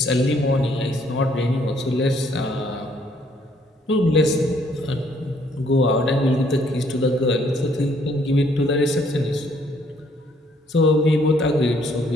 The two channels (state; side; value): normal; both; correlation 0.65